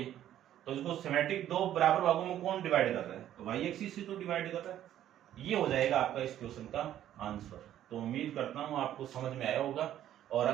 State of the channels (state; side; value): quieter; left; 11.7 dB